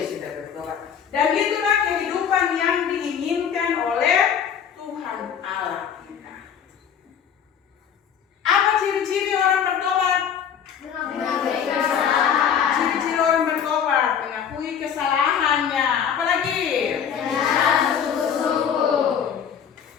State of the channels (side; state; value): right; quieter; 8.1 dB